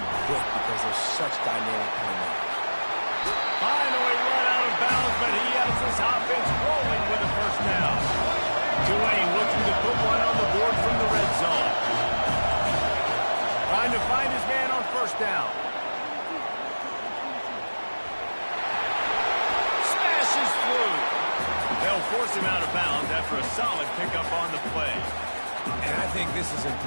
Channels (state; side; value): inverted; both; correlation -1.00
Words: quick because they're such dynamic playmakers. Finally run out of bounds, but he has this offense rolling with a 1st down. Tulane looking to put one on the board from the red zone. Trying to find his man on 1st down. Smashes through. They'll force him out of bounds after a solid pickup on the play. And I think this is